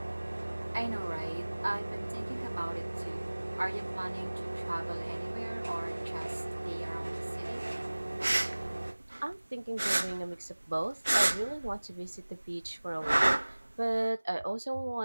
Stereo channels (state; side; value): inverted; both; correlation -1.00